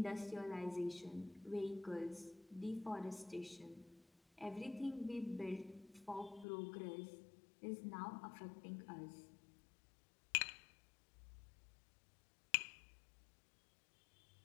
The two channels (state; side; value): drops out; right; at 6.5 s